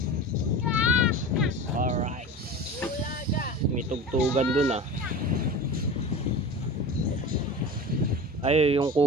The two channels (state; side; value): normal; both; correlation 0.32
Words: Alright. May tugtugan dun ah. Ay, yung